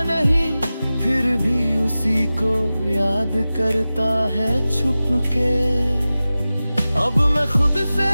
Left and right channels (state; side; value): inverted; both; correlation -0.96